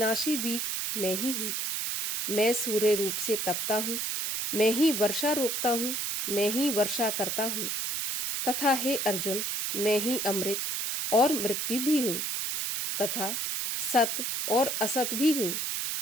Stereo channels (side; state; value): right; noise; hiss, 1 dB below the sound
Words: बीज मैं ही हूँ। मैं सूर्य रूप से तपता हूँ। मैं ही वर्षा रोकता हूँ। मैं ही वर्षा करता हूँ। तथा हे अर्जुन, मैं ही अमृत और मृत्यु भी हूँ, तथा सत और असत भी हूँ।